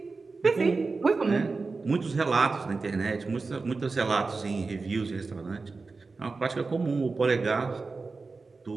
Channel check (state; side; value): quieter; left; 4.1 dB